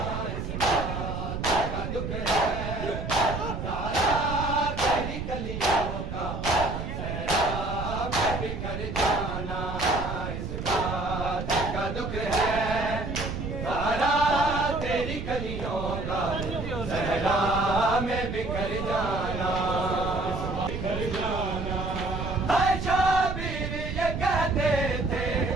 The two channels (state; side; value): noise; right; rumble, 5 dB below the sound